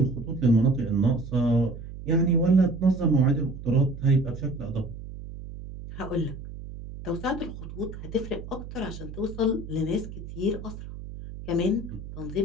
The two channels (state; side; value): noise; right; hum, 12 dB below the sound